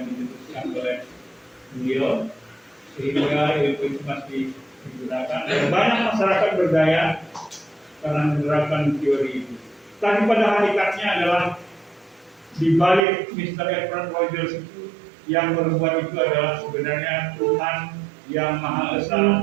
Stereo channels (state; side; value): drops out; left; at 13.1 s